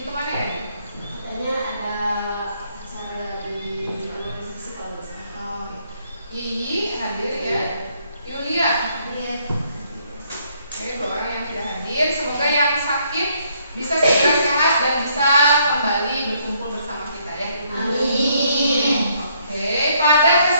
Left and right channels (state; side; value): inverted; both; correlation -0.69